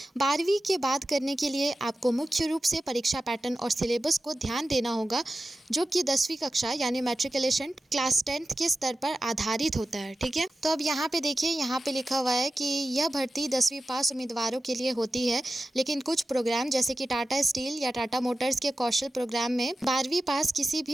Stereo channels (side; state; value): both; normal; correlation 0.93